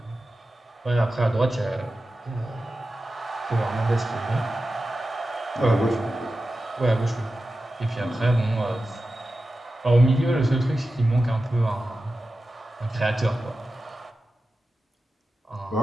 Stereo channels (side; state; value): both; normal; correlation 0.93